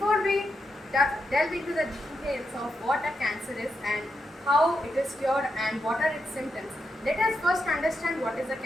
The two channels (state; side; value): normal; both; correlation 0.85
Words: we delve into the details of what a cancer is and how it is cured and what are its symptoms, let us first understand what is a